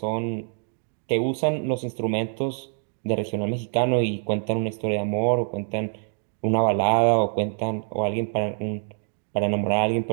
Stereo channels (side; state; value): left; silent; digital silence